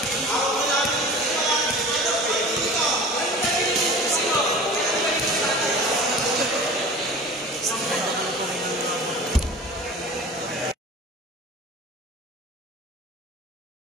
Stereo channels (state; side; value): normal; both; correlation 0.39